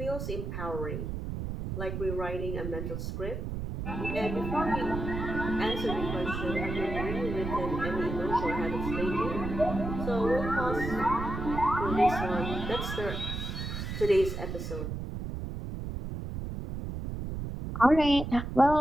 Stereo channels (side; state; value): right; noise; rumble, 5 dB below the sound